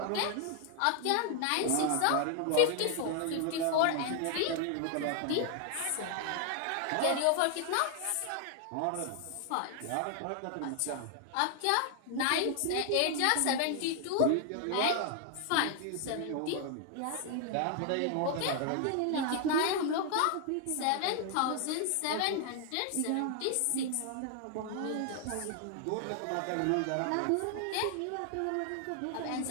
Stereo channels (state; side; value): different; both; correlation 0.00